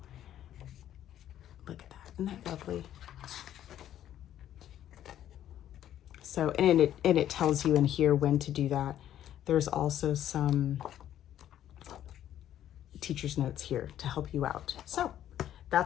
Look at that, isn't that lovely? So, and it tells you in here when to do that. There's also some teacher's notes here to help you out. So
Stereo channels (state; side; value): quieter; right; 11.4 dB